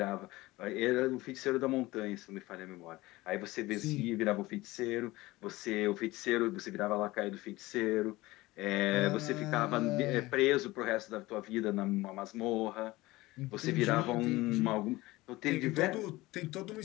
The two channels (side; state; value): right; quieter; 19.5 dB